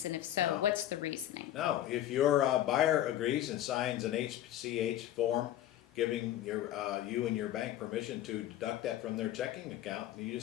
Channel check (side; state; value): right; quieter; 12.7 dB